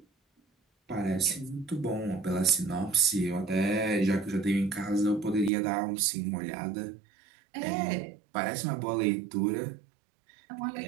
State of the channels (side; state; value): left; drops out; at 5.5 s